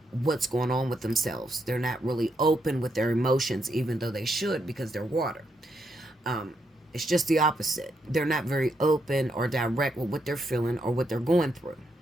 what's going on with themselves. They're not really open with their emotions, even though they should, because they're water. It's just the opposite. They're not very open or direct with what they're feeling or what they're going through.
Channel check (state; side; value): normal; both; correlation 0.79